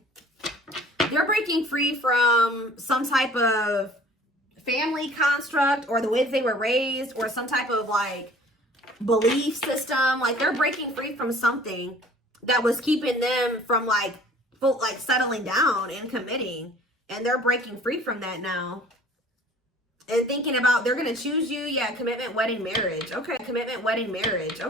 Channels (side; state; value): both; normal; correlation 0.50